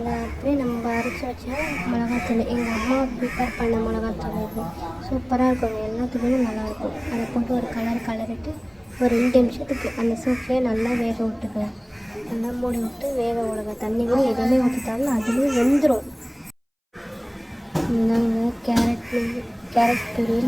அப்படியே நம்ம அரைச்சி வச்சா மிளகாத்தூள் எங்கள் அம்மா ப்ரிப்பேர் பண்ண மிளகாத்தூள் இது சூப்பராக இருக்கும். எல்லாத்துக்குமே நல்லாயிருக்கும். அதை போட்டு ஒரு கலரிட்டு ஒரு 2 நிமிஷத்துக்கு அந்த சூப்லேயே நல்லா வேக விட்டுக்கலாம். நல்லா மூடி விட்டு வேக விடுங்க. தண்ணி கூட எதுவுமே ஊற்றிட்டாலும் அதுலேயே வெந்துடும். இந்தாங்க கேரட்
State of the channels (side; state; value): both; identical; correlation 1.00